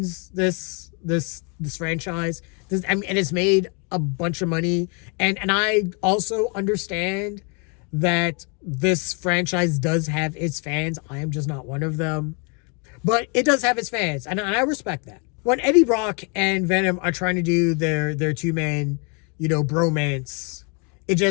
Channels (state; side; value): quieter; right; 35.1 dB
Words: this franchise. And it's made a bunch of money. And I also understand that this franchise does have its fans. I am just not one of them. But it does have its fans, and I respect that. When Eddie Brock and Venom are trying to do their two-man, bromance, it